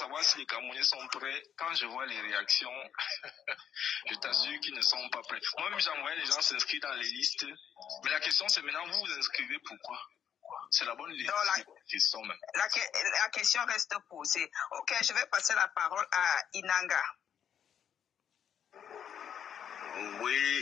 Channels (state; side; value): quieter; right; 8.8 dB